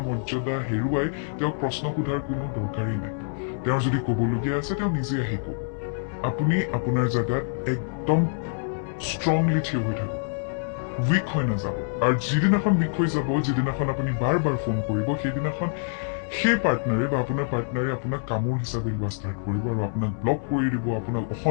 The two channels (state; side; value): silent; right; digital silence